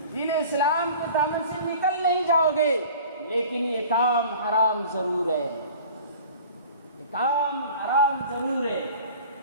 اسلام کے دامن سے نکل نہیں جاؤ گے، لیکن یہ کام حرام ضرور ہے. یہ کام حرام ضرور ہے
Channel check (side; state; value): both; inverted; correlation -0.44